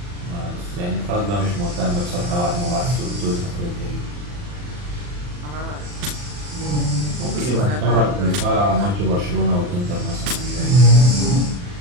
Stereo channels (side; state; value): left; late; 40 ms